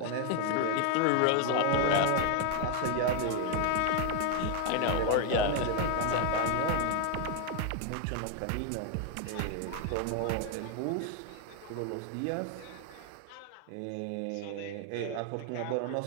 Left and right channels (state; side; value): different; both; correlation 0.00